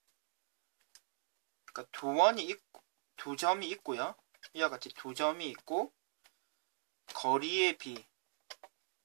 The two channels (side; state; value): left; silent; digital silence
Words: 그러니까 두 점이 있고요. 이와 같이 두 점이 있고 거리의 B가